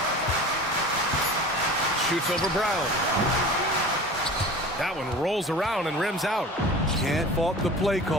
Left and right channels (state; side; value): normal; both; correlation 0.38